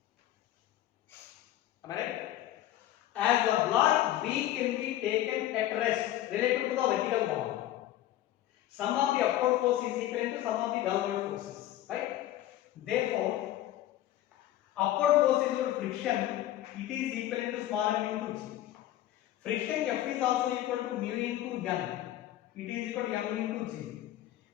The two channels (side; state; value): right; quieter; 13.7 dB